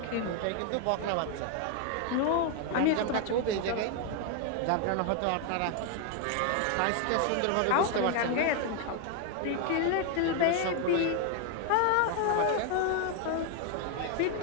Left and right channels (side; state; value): both; different; correlation 0.01